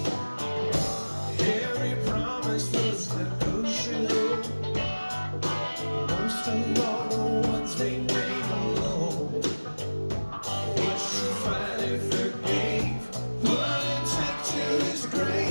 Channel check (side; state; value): both; inverted; correlation -1.00